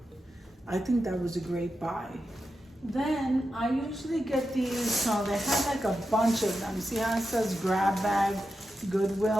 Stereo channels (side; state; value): both; normal; correlation 0.89